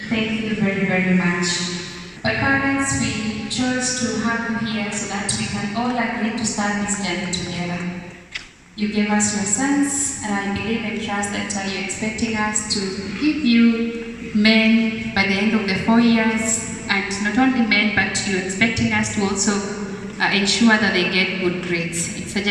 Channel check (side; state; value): both; identical; correlation 1.00